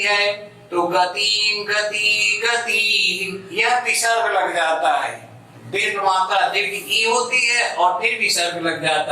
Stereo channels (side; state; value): both; identical; correlation 1.00